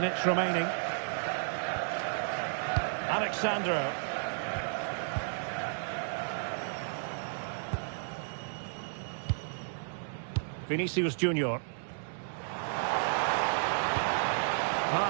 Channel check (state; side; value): silent; left; digital silence